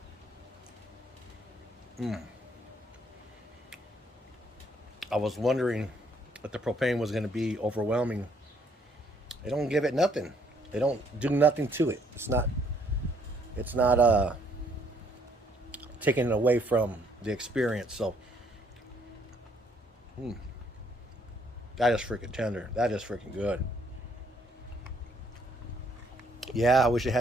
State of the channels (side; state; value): both; normal; correlation 0.67